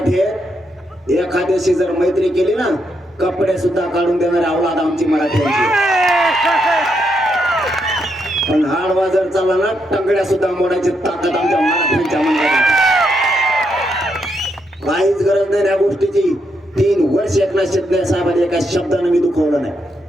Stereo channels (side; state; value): both; normal; correlation 0.79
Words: एखाद्याशी जर मैत्री केली ना, कपडे सुद्धा काढून देणारे अवलाद आमची मराठ्यांची. पण हाडवा जर चालला ना, टंगड्या सुद्धा मोडायची ताकद आमच्या मराठ्यांच्या मनात. काहीच गरज नाही या गोष्टीची. 3 वर्ष एकनाथ शिंदे साहेबांनी एका शब्दाने मी दुखवलं नाही.